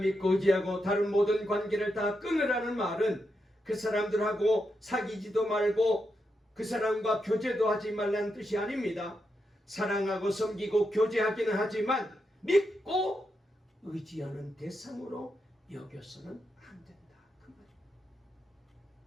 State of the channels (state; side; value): normal; both; correlation 0.85